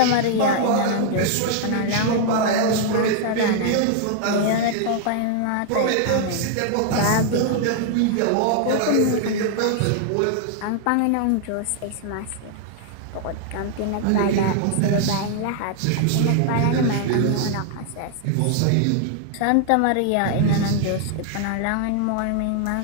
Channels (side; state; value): both; different; correlation 0.00